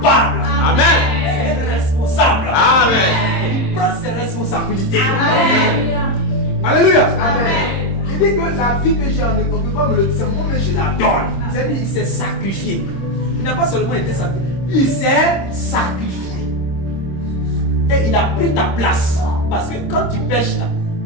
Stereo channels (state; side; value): late; right; 26 ms